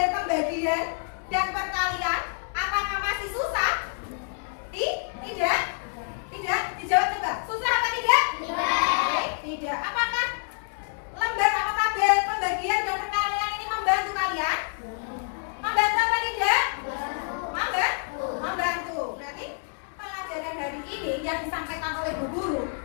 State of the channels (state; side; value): silent; right; 60 dB below the other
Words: pembagian dan perkalian, apakah masih susah? Tidak? Tidak? Dijawab coba. Susah apa tidak? Tidak. Apakah lembar atau tabel pembagian dan perkalian ini membantu kalian? Membantu apa tidak? Membantu. Berarti pelajaran hari ini yang disampaikan oleh Bu Guru